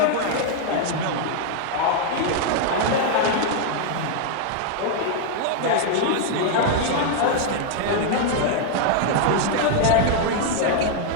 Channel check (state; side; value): different; both; correlation 0.00